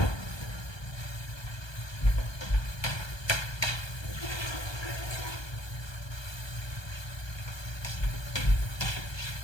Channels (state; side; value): late; right; 1.2 ms